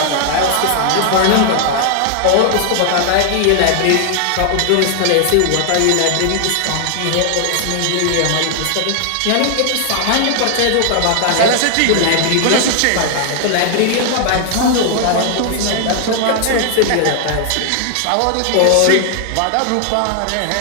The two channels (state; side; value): different; both; correlation 0.00